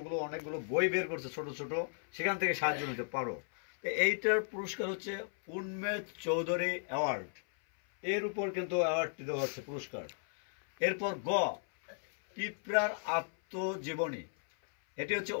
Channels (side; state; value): right; silent; 54 dB below the other